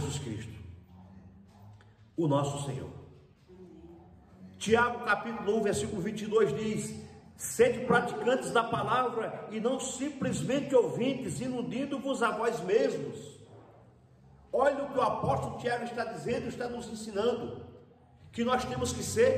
Cristo, o nosso Senhor. Tiago capítulo 1, versículo 22 diz: sede praticantes da palavra e não simplesmente ouvintes, iludindo-vos a vós mesmos. Olha o que o apóstolo Tiago está dizendo, está nos ensinando, que nós temos que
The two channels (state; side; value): identical; both; correlation 1.00